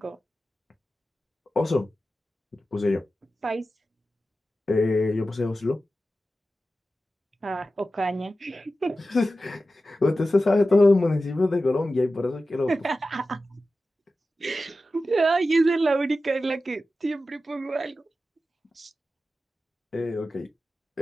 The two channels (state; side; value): normal; both; correlation 0.93